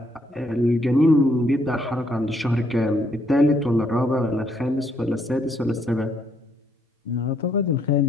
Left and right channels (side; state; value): both; normal; correlation 0.71